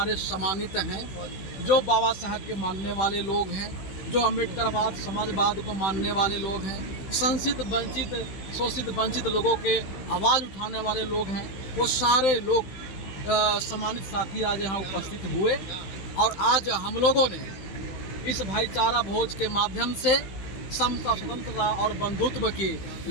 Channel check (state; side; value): late; right; 15 ms